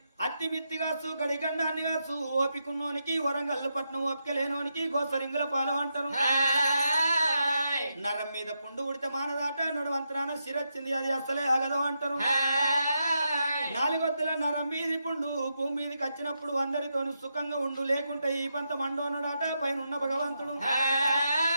అత్తి మిత్తిగాసు గడిగండాన్ని కాసు, ఓపికున్నోనికి వరంగల్లు పట్నం ఓపిక లేనోనికి గోసరింగుల పాలు అంటారు. నరం మీద పుండు ఉడితే మానదాట, నడువంతరాన శిరొచ్చింది అది అసలే ఆగదు అంటారు. నాలుగొద్దుల నరం మీది పుండు భూమి మీదకి వచ్చినప్పుడు అందరితోనూ సుఖంగా ఉండు, లేకుంటే ఈ పంత మండోనడాట పైన ఉన్న భగవంతుడు.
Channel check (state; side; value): inverted; both; correlation -0.84